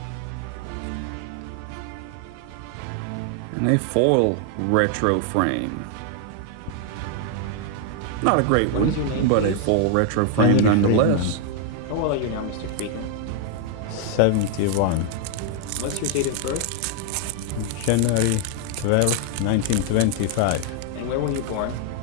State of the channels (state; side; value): different; both; correlation 0.00